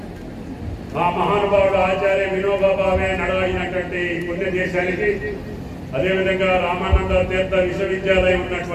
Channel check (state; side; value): identical; both; correlation 1.00